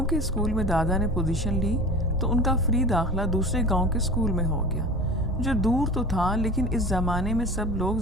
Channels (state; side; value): normal; both; correlation 0.36